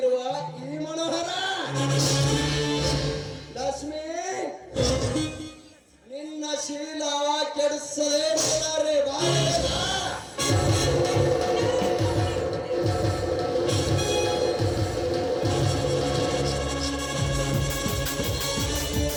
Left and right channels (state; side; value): identical; both; correlation 1.00